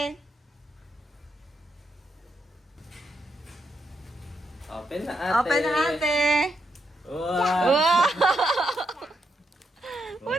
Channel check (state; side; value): normal; both; correlation 0.80